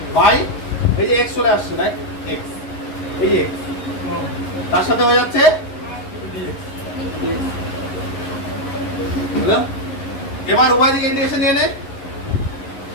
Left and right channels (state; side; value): late; right; 11 ms